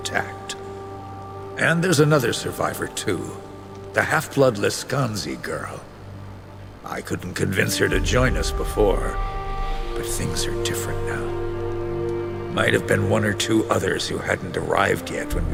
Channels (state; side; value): identical; both; correlation 1.00